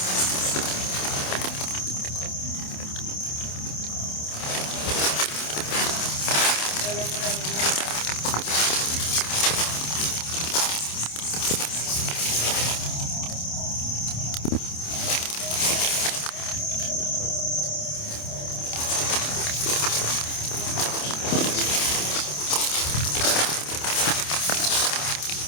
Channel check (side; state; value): right; late; 27 ms